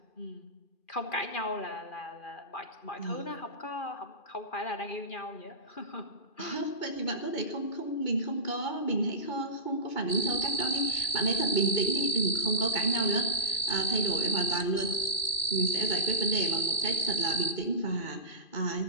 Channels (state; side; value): late; right; 2.5 ms